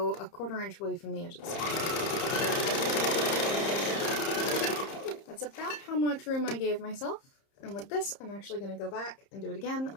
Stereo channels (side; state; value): right; late; 30 ms